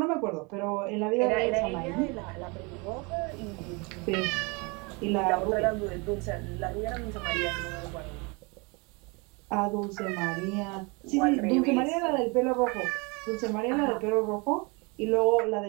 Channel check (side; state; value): left; quieter; 29.4 dB